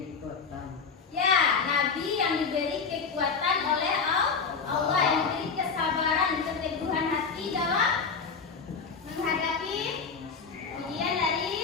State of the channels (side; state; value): right; quieter; 5.3 dB